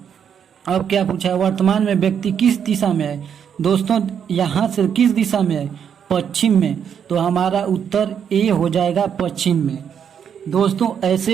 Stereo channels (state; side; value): quieter; left; 8.0 dB